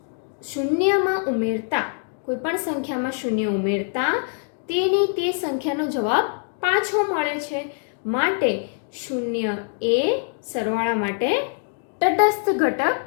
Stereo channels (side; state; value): right; silent; 59 dB below the other